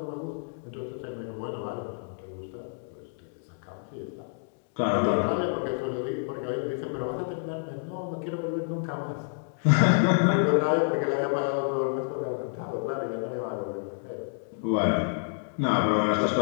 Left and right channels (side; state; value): right; silent; digital silence